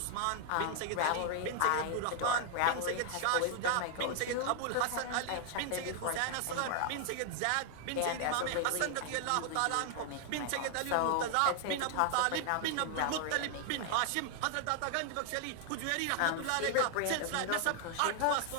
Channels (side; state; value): both; different; correlation 0.00